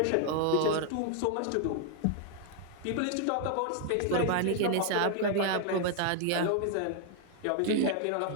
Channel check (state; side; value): different; both; correlation 0.00